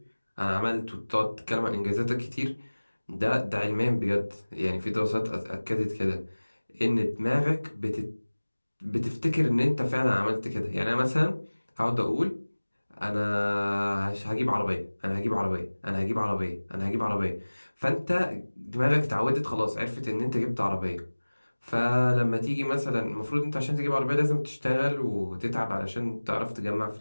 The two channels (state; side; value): inverted; both; correlation -1.00